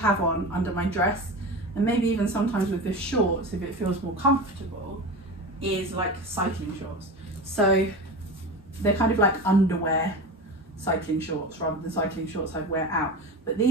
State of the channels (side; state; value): both; normal; correlation 0.27